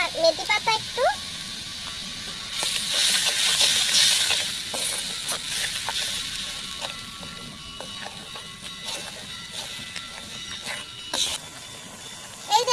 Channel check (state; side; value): identical; both; correlation 1.00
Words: পাতা একটু, এই